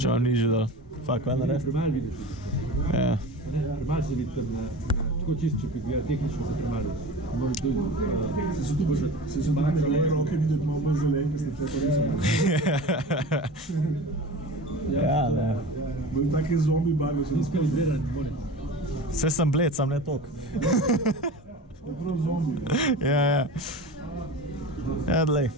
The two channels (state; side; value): normal; both; correlation 0.34